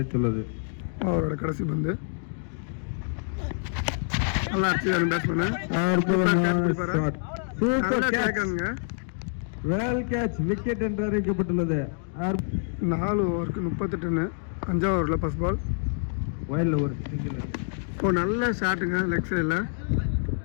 அவரோட கடைசி பந்து நல்லா அடிச்சு பேட்ஸ்மேன். வெல் கேட்ச் விக்கெட் என்று அறிவிக்கப்பட்டுள்ளது. 4 ஓவருக்கு 38 ரன். 5வது ஓவரில் ஃபர்ஸ்ட் பால். வயலில் ஒரு சிங்கிள். இப்போ நல்ல ஷாட்டுங்க லெக் சைடில்.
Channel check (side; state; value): right; silent; digital silence